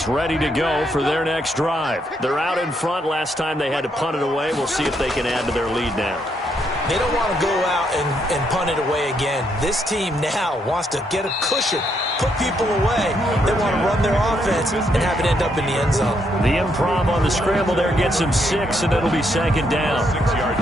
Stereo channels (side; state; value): both; normal; correlation 0.75